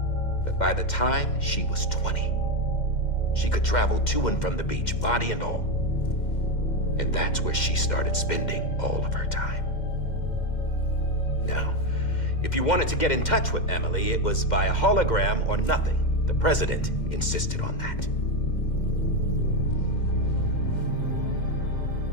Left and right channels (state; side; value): late; right; 2.1 ms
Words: But by the time she was 20, she could travel to and from the beach, body and all. And that's where she started spending all of her time. Now, if you wanted to get in touch with Emily, it was via hologram or nothing. The president insisted on that.